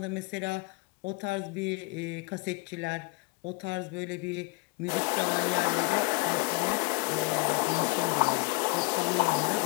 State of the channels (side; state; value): right; quieter; 28.8 dB